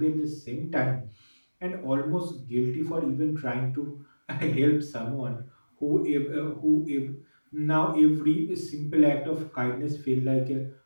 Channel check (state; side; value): inverted; both; correlation -1.00